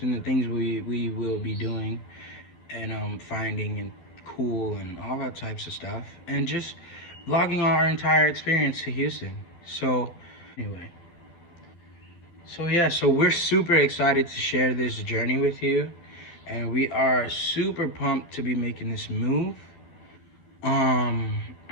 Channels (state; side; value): late; right; 12 ms